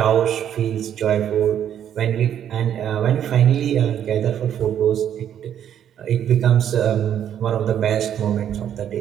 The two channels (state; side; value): quieter; left; 9.8 dB